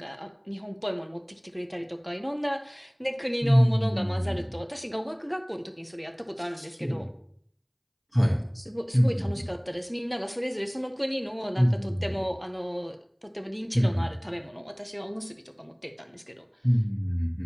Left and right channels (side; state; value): both; identical; correlation 1.00